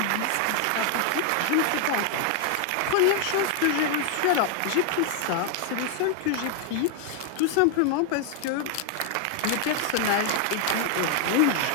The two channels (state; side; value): different; both; correlation 0.00